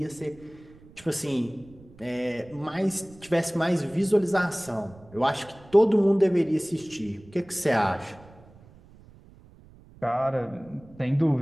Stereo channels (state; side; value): noise; right; rumble, 23 dB below the sound